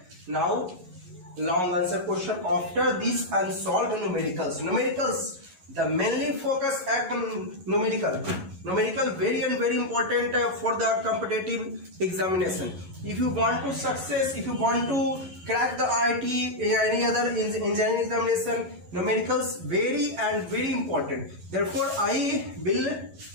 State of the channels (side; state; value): left; late; 11 ms